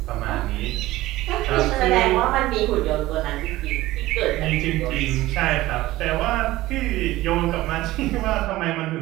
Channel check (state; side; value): quieter; left; 17.2 dB